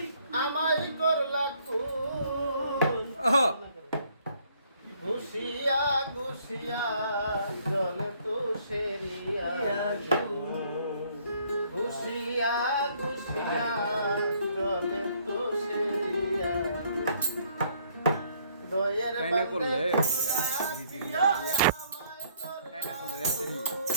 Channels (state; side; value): inverted; both; correlation -0.64